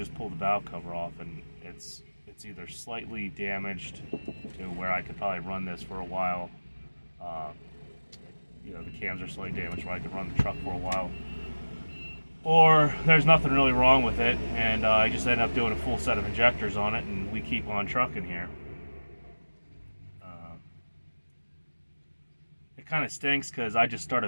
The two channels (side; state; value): both; inverted; correlation -1.00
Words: pull the valve cover off and it's either slightly damaged to where I could probably run this for a while. The cams are slightly damaged where I could run the truck for a while, or there's nothing really wrong with it, and I just end up doing a full set of injectors on it, and we keep on trucking here. It kind of stinks because I just